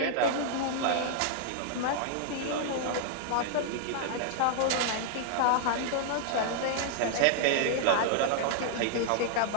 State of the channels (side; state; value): both; different; correlation -0.01